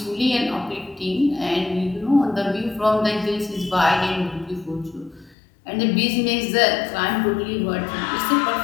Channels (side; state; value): right; drops out; at 5.4 s